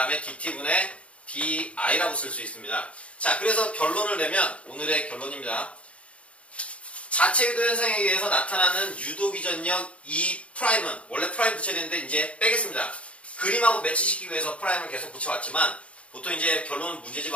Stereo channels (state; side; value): late; right; 0.063 ms